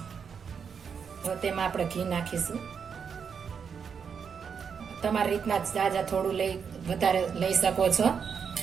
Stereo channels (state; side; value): quieter; left; 6.6 dB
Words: હવે તેમાં આપણે ઘી નાખીશું. તમારી રીતના જાજા થોડું વધારે લઈ શકો છો.